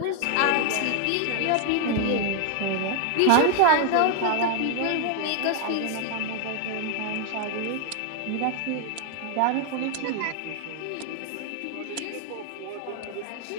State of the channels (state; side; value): different; both; correlation 0.00